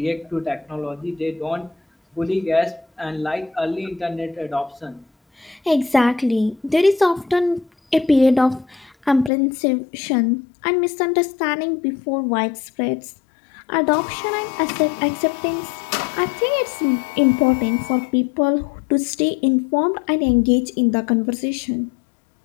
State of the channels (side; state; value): right; drops out; at 9.3 s